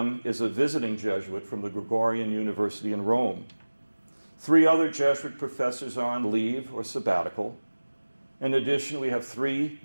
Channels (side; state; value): both; inverted; correlation -1.00